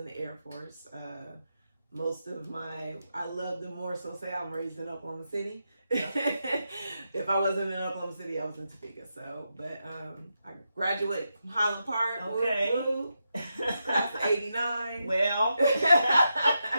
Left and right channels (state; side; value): inverted; both; correlation -0.85